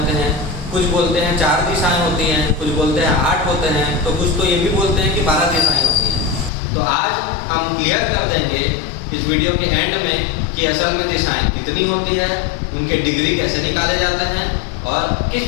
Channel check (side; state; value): right; drops out; at 6.5 s